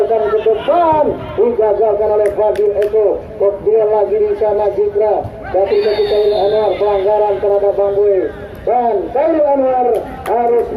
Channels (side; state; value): both; identical; correlation 1.00